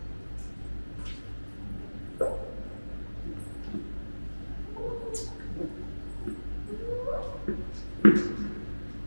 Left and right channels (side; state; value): both; inverted; correlation -1.00